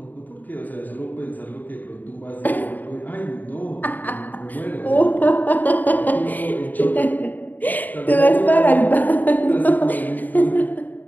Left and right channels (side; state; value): right; late; 0.085 ms